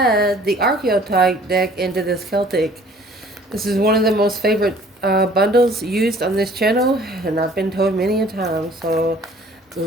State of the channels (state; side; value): normal; both; correlation 0.54